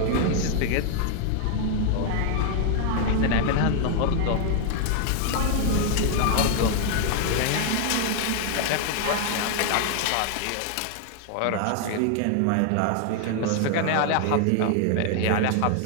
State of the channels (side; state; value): both; different; correlation 0.00